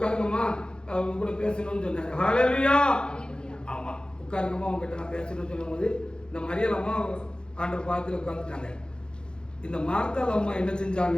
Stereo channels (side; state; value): right; late; 0.049 ms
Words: அவங்க கூட பேசணும்னு சொன்னாரு. ஹல்லேலூயா. ஆமா உட்காருங்கம்மா அவங்க கிட்ட நான் பேசணும்னு சொல்லும் போது இந்த மரியாதை அம்மா ஆண்டவர் பாதத்தில் உட்காந்துட்டாங்க. இந்த மார்த்தாள் அம்மா என்ன